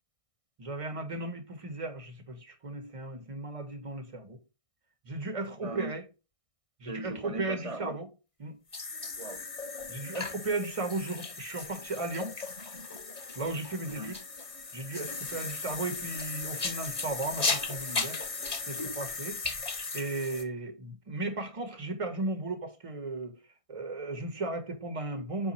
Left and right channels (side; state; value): left; late; 1.6 ms